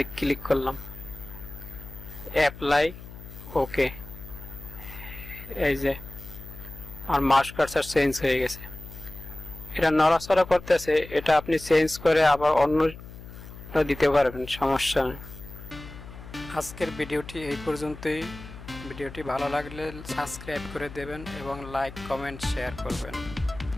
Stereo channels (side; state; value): left; noise; hum, 15 dB below the sound